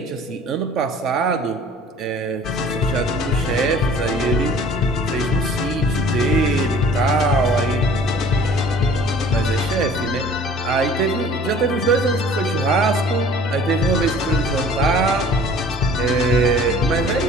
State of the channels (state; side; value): normal; both; correlation 0.49